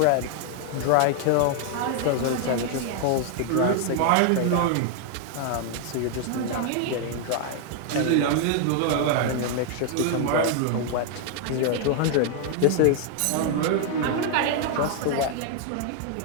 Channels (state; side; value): different; both; correlation 0.00